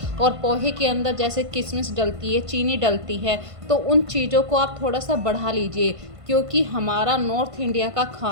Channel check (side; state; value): left; late; 1.5 ms